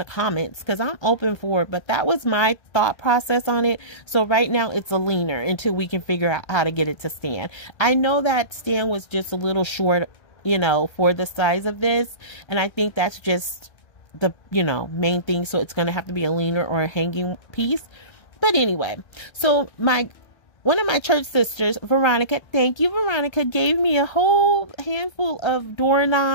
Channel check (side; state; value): right; late; 1.3 ms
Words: comments, because I'm open for it. But that was my thought process on it. So right now it's a leaner until we can figure out how to get it to stand. I know that stand was just a little short, for the size of this. And I think that's just the, main thing. So it's going to have to be a leaner or a hanging piece. But anyway, so one of my church sisters, Veronica, thank you, Veronica, gave me a whole handful of